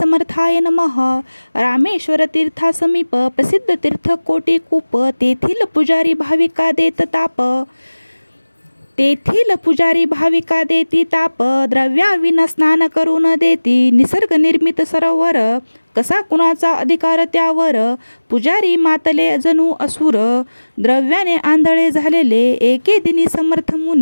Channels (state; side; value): inverted; both; correlation -1.00